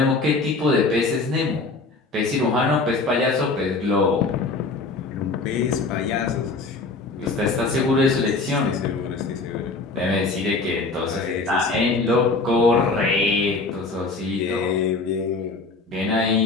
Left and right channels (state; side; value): quieter; right; 3.7 dB